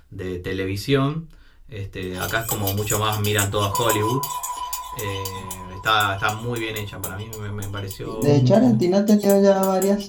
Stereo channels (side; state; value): both; identical; correlation 1.00